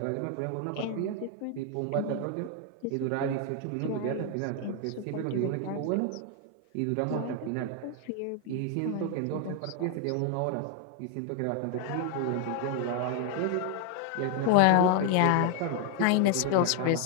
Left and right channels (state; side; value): different; both; correlation 0.00